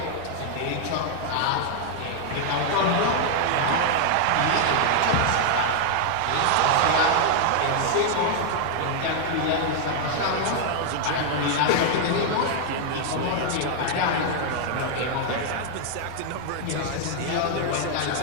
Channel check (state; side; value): different; both; correlation 0.00